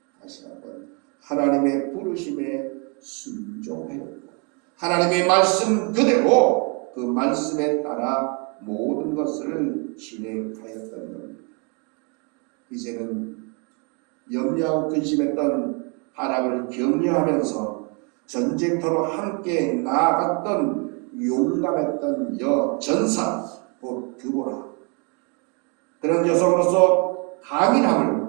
다시 한번 하나님의 부르심에 순종하였고 하나님의 말씀 그대로 그 말씀에 따라 모든 것을 진행하였던 겁니다. 이제는 염려하고 근심했던 바락을 격려하면서 전쟁터로 함께 나아갔던 용감했던 여전사 곧 드보라, 그런 여성으로서 강인함을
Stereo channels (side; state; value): left; quieter; 34.6 dB